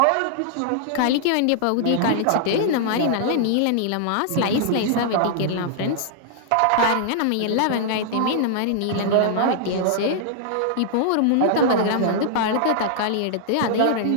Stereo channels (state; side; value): different; both; correlation -0.01